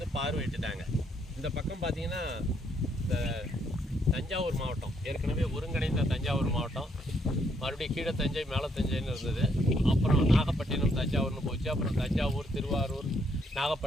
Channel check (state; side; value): normal; both; correlation 0.72